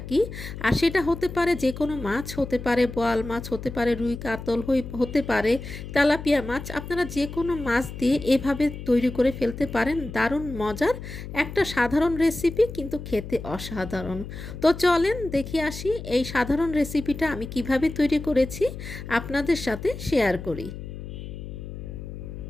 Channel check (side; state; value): left; noise; hum, 10 dB below the sound